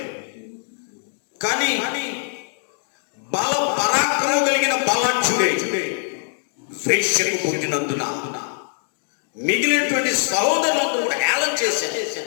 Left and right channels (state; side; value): silent; right; 64 dB below the other